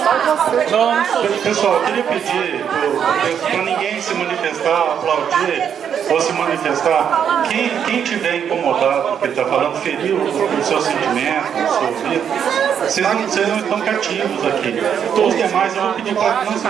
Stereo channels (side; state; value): left; quieter; 8.2 dB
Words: Pessoal, eu queria pedir para ninguém se manifestar, aplaudir ou se manifestar. Quem tiver incomodado com o que ele está falando, feriu o seu sentimento, o seu ouvido, vocês não estão cativos aqui. Todos os demais eu vou pedir para que não se